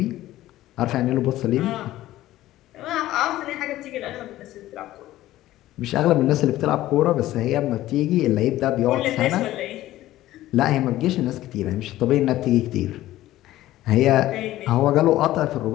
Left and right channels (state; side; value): quieter; right; 15.1 dB